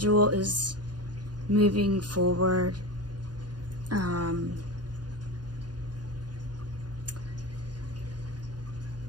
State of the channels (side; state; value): left; late; 0.70 ms